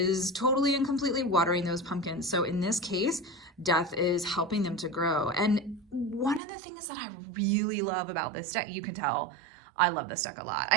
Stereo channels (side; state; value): left; drops out; at 6.4 s